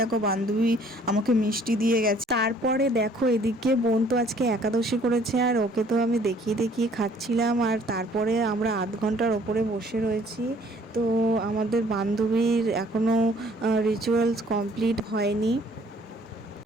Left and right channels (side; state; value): both; normal; correlation 0.59